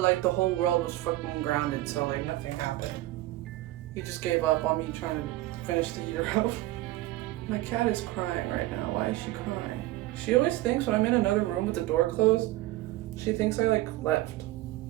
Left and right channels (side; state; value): left; quieter; 17.0 dB